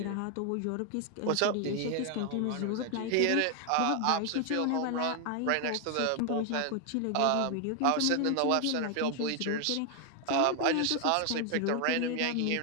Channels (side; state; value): both; different; correlation 0.00